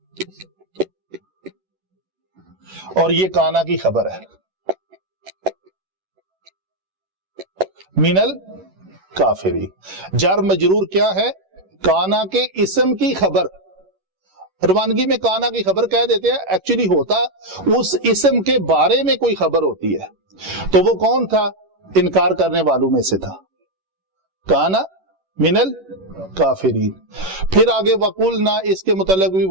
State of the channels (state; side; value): late; left; 11 ms